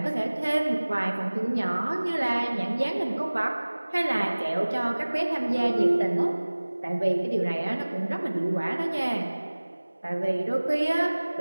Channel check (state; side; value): inverted; both; correlation -1.00